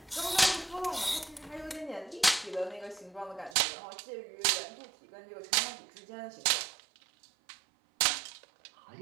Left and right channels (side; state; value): left; drops out; at 3.6 s